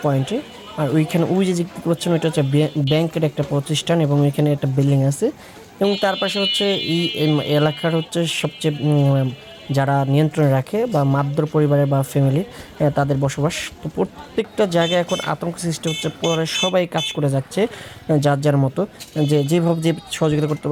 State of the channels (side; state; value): both; identical; correlation 1.00